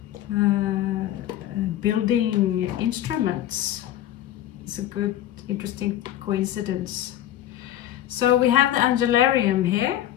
building instruments. It's a good, interesting coincidence. So we have the Angelarium here,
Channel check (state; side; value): quieter; right; 12.4 dB